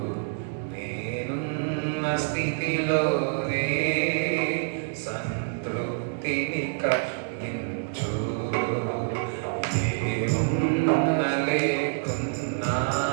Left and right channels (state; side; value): silent; left; digital silence